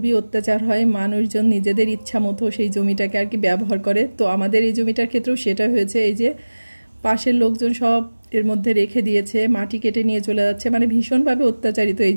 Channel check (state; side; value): inverted; both; correlation -1.00